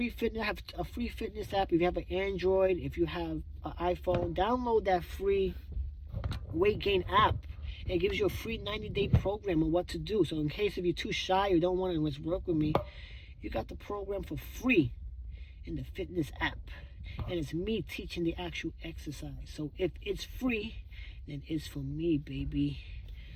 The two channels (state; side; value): identical; both; correlation 1.00